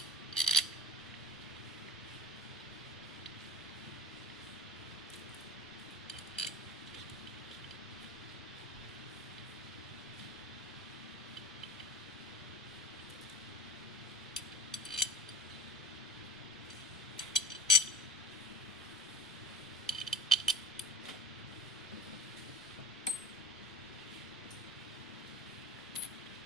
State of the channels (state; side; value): normal; both; correlation 0.33